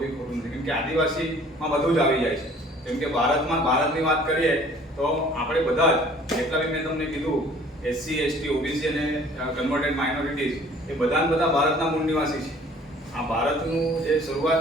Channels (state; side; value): normal; both; correlation 0.53